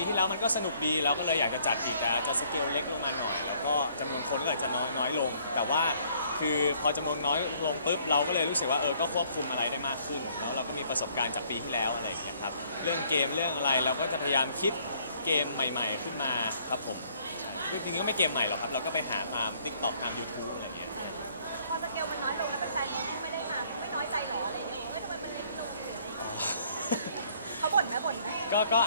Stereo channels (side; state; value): both; inverted; correlation -0.62